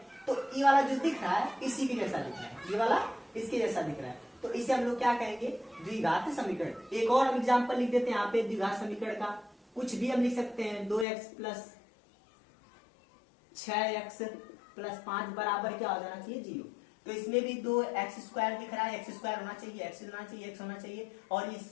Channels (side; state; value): right; drops out; at 11.1 s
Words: तो ये वाला जो दिख रहा है इसी के जैसा दिख रहा है, ये वाला इसके जैसा दिख रहा है, तो इसे हम लोग क्या कहेंगे, द्विघात समीकरण। एक और हम एग्जाम्पल लिख देते हैं यहाँ पे द्विघात समीकरण का, कुछ भी हम लिख सकते हैं। 2x + 6x + 5 बराबर क्या हो जाना चाहिए, 0। तो इसमें भी 2x² दिख रहा है, x² होना चाहिए, x होना चाहिए, x होना चाहिए और ये